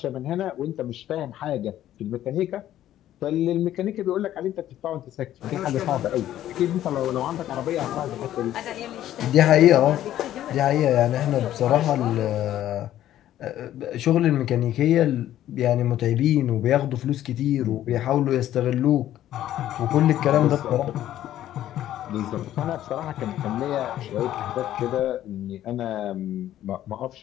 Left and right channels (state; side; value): quieter; right; 12.5 dB